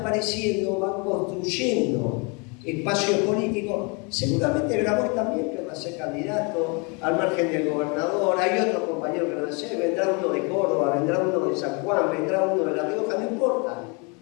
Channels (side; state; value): right; quieter; 31.8 dB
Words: van construyendo espacios políticos. Seguramente Grabois también querrá ser candidato al margen del gobernador. Hay otros compañeros que van a ser. Vendrá uno de Córdoba, vendrá uno de San Juan, vendrá uno de La Rioja, no importa.